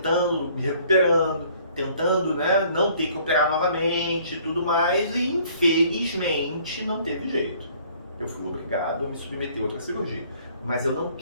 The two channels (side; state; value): both; inverted; correlation -0.58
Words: me recuperando, tentando, né, não ter que operar novamente e tudo mais, e infelizmente não teve jeito. Eu fui obrigado a me submeter a outra cirurgia. Mas eu não